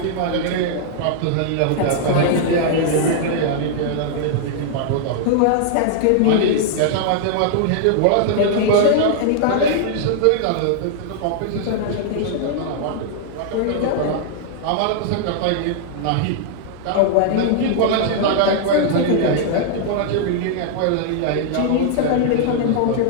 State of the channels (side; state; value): both; different; correlation -0.01